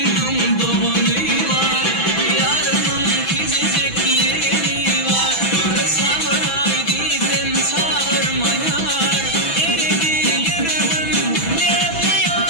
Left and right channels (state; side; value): late; right; 6.0 ms